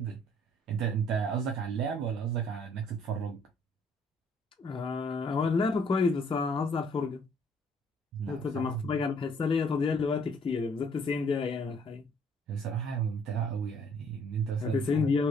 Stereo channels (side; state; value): both; normal; correlation 0.62